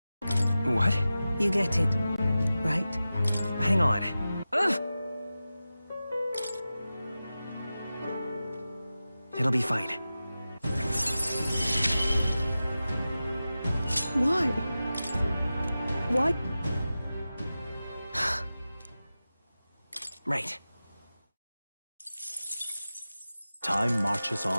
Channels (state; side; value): inverted; both; correlation -0.94